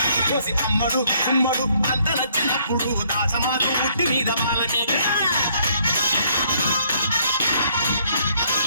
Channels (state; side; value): inverted; both; correlation -0.67